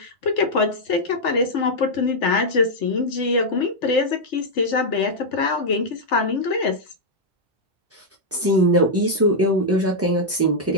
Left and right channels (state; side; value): normal; both; correlation -0.04